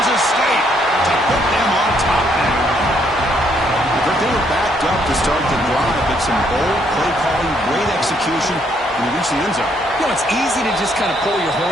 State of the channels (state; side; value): normal; both; correlation 0.70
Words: State, to put them on top now. But they were backed up to start the drive, but some bold play calling, great execution, and they reached the end zone. You know, it's easy to just kind of pull your